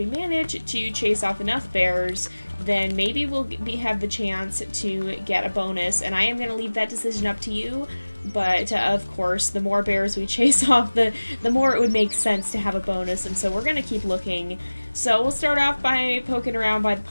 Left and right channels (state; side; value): inverted; both; correlation -1.00